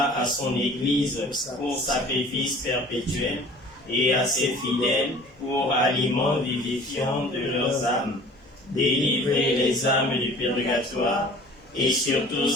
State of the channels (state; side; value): normal; both; correlation 0.47